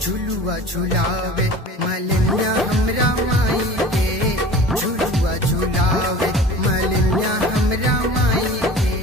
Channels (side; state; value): both; normal; correlation 0.41